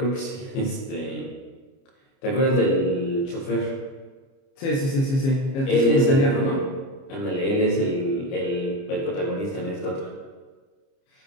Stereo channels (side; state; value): right; late; 30 ms